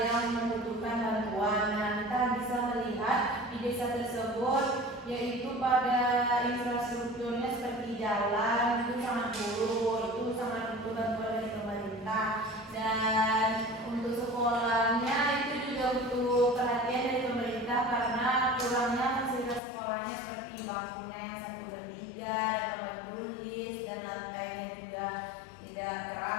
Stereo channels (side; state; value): right; drops out; at 19.6 s